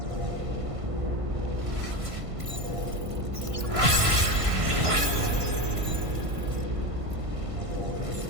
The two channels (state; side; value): late; left; 1.5 ms